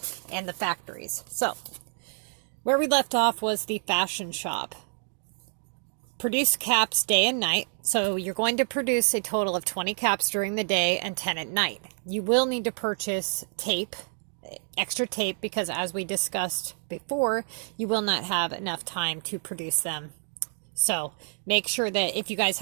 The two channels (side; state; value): left; silent; 57 dB below the other